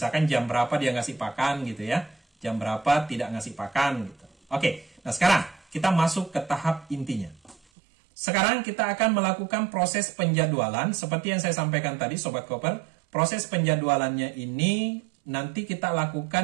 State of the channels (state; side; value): drops out; left; at 7.6 s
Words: jam berapa dia ngasih pakan gitu ya. Jam berapa tidak ngasih pakan gitu. Oke, nah sekarang kita masuk ke tahap intinya. Sekarang kita akan melakukan proses penjadwalan seperti yang saya sampaikan tadi Sobat Koper. Proses penjadwalannya ini nanti kita